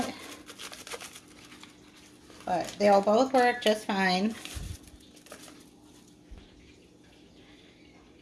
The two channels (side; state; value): both; identical; correlation 1.00